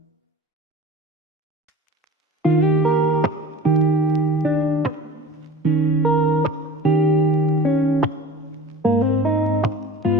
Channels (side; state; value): both; normal; correlation 0.38